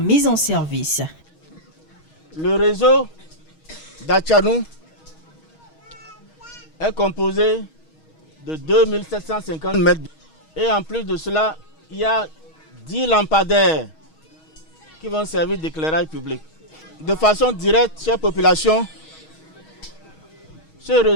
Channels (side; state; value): right; late; 6.3 ms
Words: en service. Le réseau d'Atchanou est composé de 2750 mètres. Et en plus de cela, il y a 10 lampadaires qui vont servir d'éclairage public. De façon directe, chère population, ce